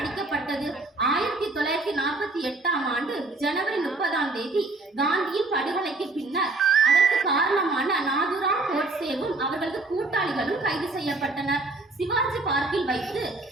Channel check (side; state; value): left; quieter; 3.2 dB